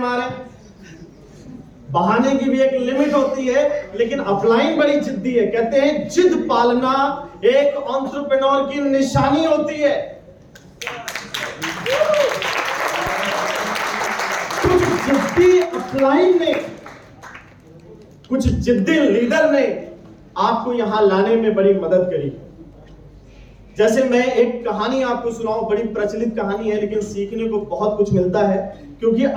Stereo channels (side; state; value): both; identical; correlation 1.00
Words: बहाने की भी एक लिमिट होती है, लेकिन अपलाइन बड़ी जिद्दी है। कहते हैं जिद पालना एक एंटरप्रेन्योर की निशानी होती है। जिद्दी अपलाइन ने, कुछ जिद्दी लीडर ने आपको यहां लाने में बड़ी मदद करी। जैसे मैं एक कहानी आपको सुनाऊं, बड़ी प्रचलित कहानी है लेकिन सीखने को बहुत कुछ मिलता है। क्योंकि